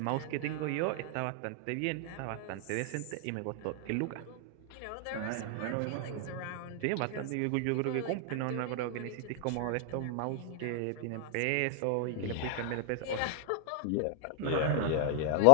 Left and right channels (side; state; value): both; different; correlation 0.00